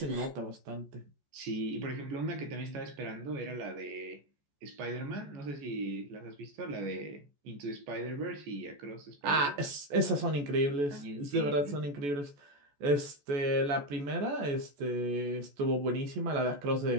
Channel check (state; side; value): late; left; 14 ms